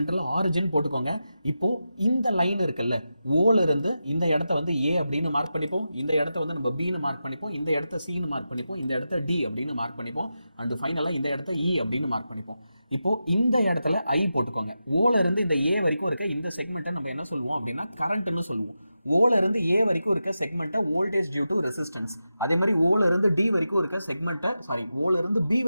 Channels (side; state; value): both; inverted; correlation -0.90